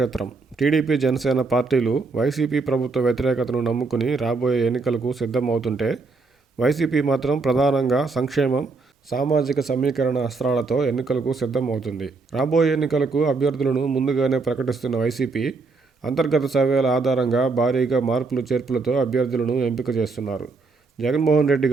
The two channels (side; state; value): left; quieter; 4.0 dB